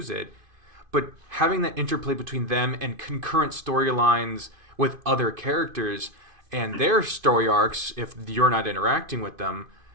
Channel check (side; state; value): left; late; 2.5 ms